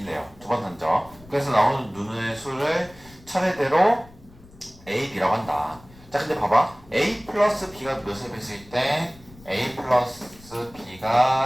두 번 던져. 그래서 나오는 눈의 수를 차례대로 A, B라고 한다. 자 근데 봐봐. A 플러스 B가 몇의 배수일 때 A 플러스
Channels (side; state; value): left; noise; rumble, 23 dB below the sound